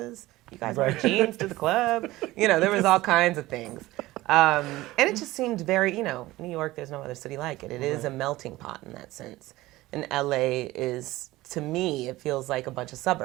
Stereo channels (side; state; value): left; quieter; 18.1 dB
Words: You guys wear jeans to the club. You know, there was all kinds of things. And it just seemed very, you know, New York, there's no other city like it. It is a melting pot in that sense. And LA is, to me, it feels like a bunch of